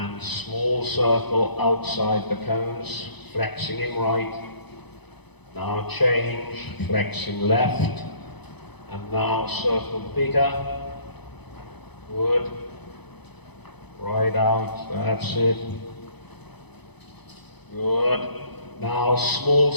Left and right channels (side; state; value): right; late; 0.99 ms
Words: small circle outside the cones, flexing him right. Now change, flexing left, and now circle bigger. Good. Right out, that's it. Good. Now small